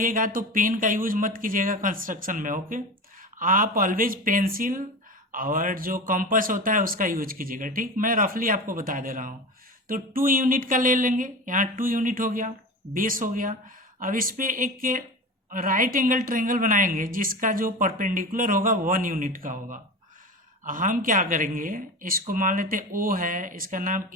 तो पेन का यूज मत कीजिएगा कंस्ट्रक्शन में। ओके, आप ऑलवेज पेंसिल और जो कंपास होता है उसका यूज कीजिएगा। ठीक, मैं रफली आपको बता दे रहा हूँ। तो 2 यूनिट का ले लेंगे, यहाँ 2 यूनिट हो गया, बेस हो गया। अब इस पे एक राइट एंगल ट्रायंगल बनाएंगे जिसका जो परपेंडिकुलर होगा 1 यूनिट का होगा। हम क्या करेंगे, इसको मान लेते ओ है, इसका नाम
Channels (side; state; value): both; normal; correlation 0.28